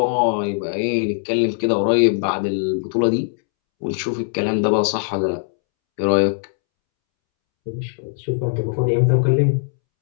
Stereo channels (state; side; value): silent; right; 66 dB below the other